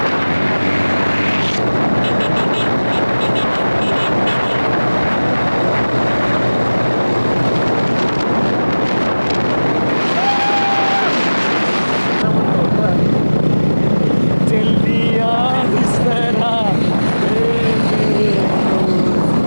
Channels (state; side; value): inverted; both; correlation -1.00